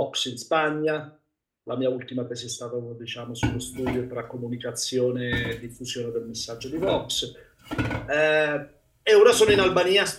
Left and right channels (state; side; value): identical; both; correlation 1.00